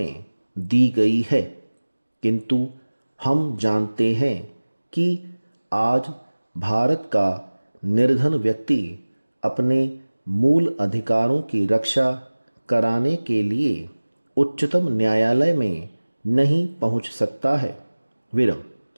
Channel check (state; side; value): inverted; both; correlation -1.00